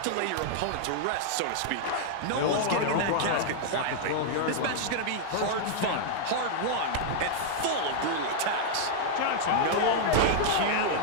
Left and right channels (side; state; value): both; different; correlation -0.01